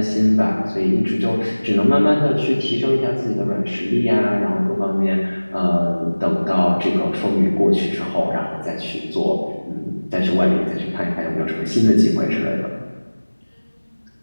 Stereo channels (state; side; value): inverted; both; correlation -1.00